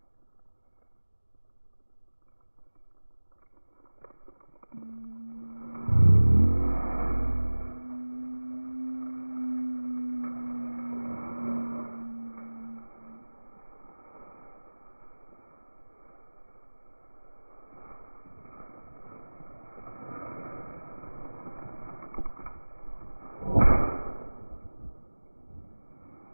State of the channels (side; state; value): both; inverted; correlation -1.00